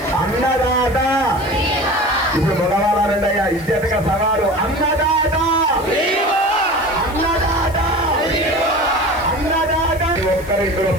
అన్నదాత. ఇప్పుడు మగవాళ్ళు అనండి అయ్యా ఇజ్జతగా సవాలు అన్నదాత అన్నదాత అన్నదాత. ఒక్కరు ఇందులో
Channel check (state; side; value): noise; left; hiss, 21 dB below the sound